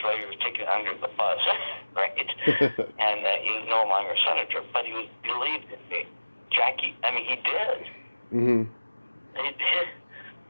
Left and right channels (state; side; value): inverted; both; correlation -1.00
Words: later, he was taken under the bus, right? And he's no longer a senator, but he believed in me. Jackie, he did. Mm-hmm. He did.